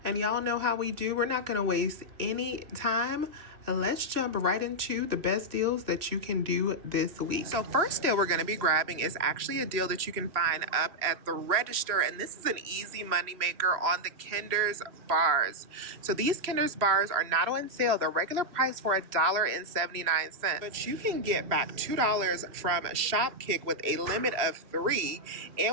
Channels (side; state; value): left; late; 3.0 ms